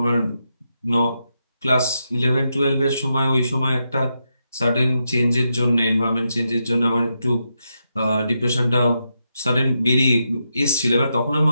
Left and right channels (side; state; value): both; inverted; correlation -0.84